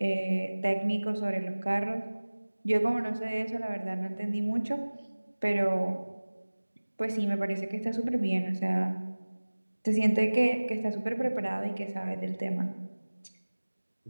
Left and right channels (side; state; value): both; inverted; correlation -1.00